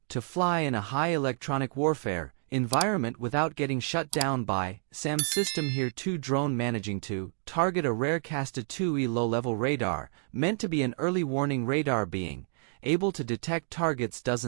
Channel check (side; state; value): left; silent; 58 dB below the other